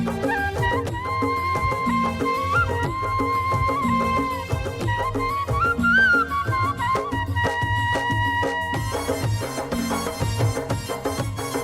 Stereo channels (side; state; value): both; identical; correlation 1.00